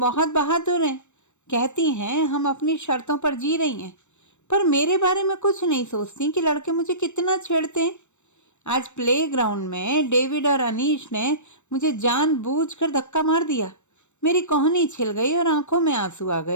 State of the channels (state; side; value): late; right; 0.84 ms